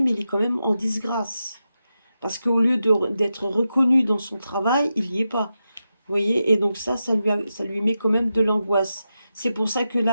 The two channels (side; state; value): both; inverted; correlation -0.89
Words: mais il est quand même en disgrâce. Parce qu'au lieu d'être reconnu dans son travail, il n'y est pas. Vous voyez, et donc ça lui met quand même de l'angoisse. C'est pour ça que